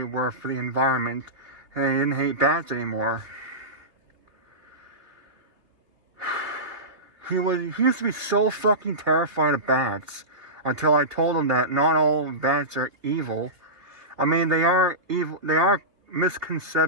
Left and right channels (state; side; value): late; left; 2.7 ms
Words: were for the environment. And he didn't hate bats anymore. He used to be so fucking terrified of bats until I told him that not all bats are evil. I mean, they are evil. There are